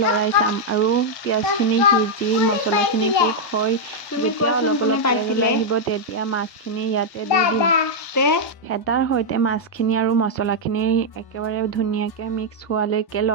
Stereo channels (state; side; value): late; right; 1.1 ms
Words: লৰাই চাম আৰু পিঁয়াজখিনি সিজি মছলাখিনি কুক হৈ যেতিয়া অলপ অলপ তেল ওলাই আহিব তেতিয়া মাছখিনি ইয়াতে দি দিম। হেতাৰ সৈতে মাছখিনি আৰু মছলাখিনি একেবাৰে ধুনীয়াকৈ মিক্স হোৱালৈকে